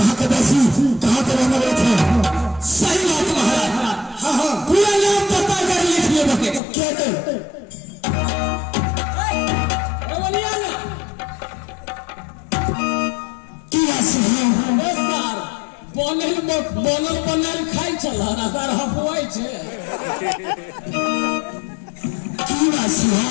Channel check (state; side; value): drops out; right; at 6.6 s